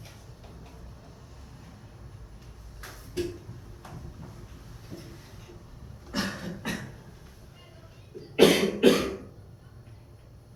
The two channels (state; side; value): identical; both; correlation 1.00